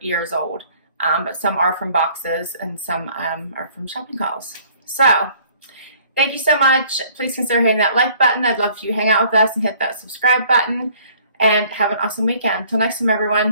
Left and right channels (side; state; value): both; inverted; correlation -0.57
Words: old. But some are from boxes and some are from shopping hauls. So thank you so much. Please consider hitting that like button. I'd love for you to hang out with us and hit that subscribe button. And have an awesome weekend. Till next time,